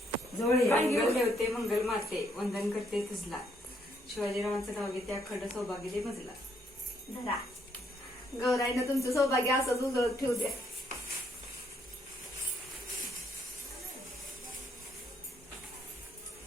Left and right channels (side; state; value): both; normal; correlation 0.71